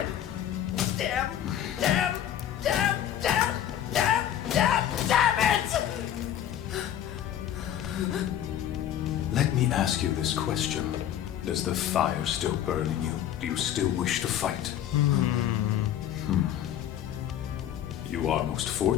Damn! Damn! Damn! Damn! Damn! Damn! Damn it! Let me ask you this question. Does the fire still burn in you? Do you still wish to fight? You are most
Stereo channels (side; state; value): right; quieter; 10.8 dB